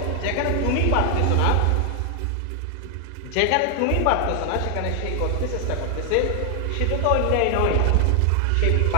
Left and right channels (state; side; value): different; both; correlation 0.00